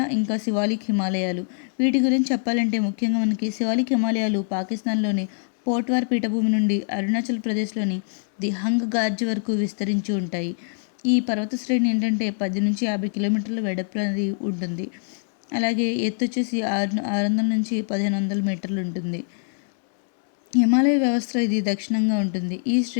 ఇంకా శివాలిక్ హిమాలయాలు. వీటి గురించి చెప్పాలంటే ముఖ్యంగా మనకి శివాలిక్ హిమాలయాలు పాకిస్తాన్లోని పోట్వార్ పీఠభూమి నుండి అరుణాచల్ ప్రదేశ్లోని ది హంగ్ గార్జ్ వరకు విస్తరించి ఉంటాయి. ఈ పర్వత శ్రేణి ఏంటంటే 10 నుంచి 50 కిలోమీటర్ల వెడల్పు అనేది ఉంటుంది. అలాగే ఎత్తు వచ్చేసి 600 నుంచి 1500 మీటర్లు ఉంటుంది. హిమాలయ వ్యవస్థ ఇది దక్షిణంగా ఉంటుంది. ఈ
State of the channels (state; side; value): silent; right; 63 dB below the other